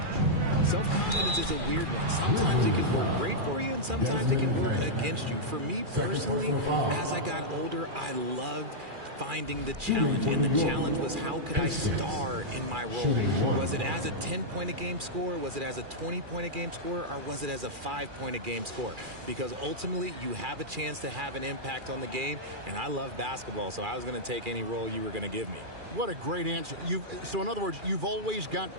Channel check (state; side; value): late; left; 2.4 ms